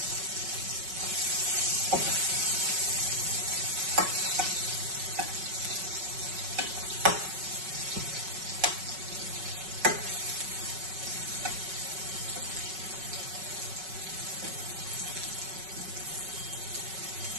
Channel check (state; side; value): late; left; 5.3 ms